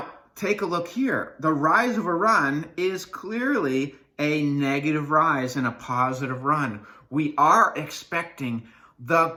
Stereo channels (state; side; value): identical; both; correlation 1.00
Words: take a look here. The rise over run is clearly a negative rise and a positive run. We are expecting the